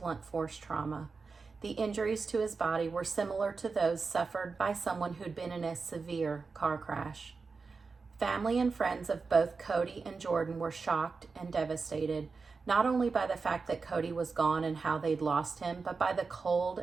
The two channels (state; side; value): quieter; left; 4.6 dB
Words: force trauma. The injuries to his body were similar to those suffered by someone who'd been in a severe car crash. Family and friends of both Cody and Jordan were shocked and devastated, not only by the fact that Cody was gone and how they'd lost him, but by the